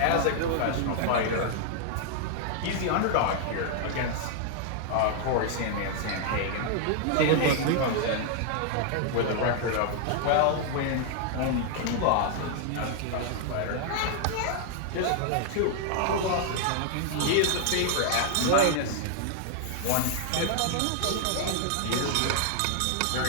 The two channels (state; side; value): different; both; correlation 0.00